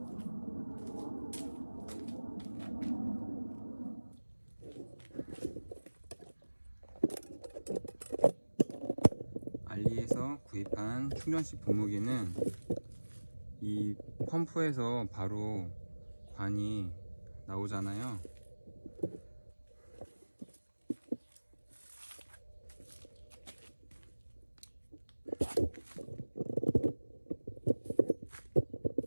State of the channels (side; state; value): both; inverted; correlation -1.00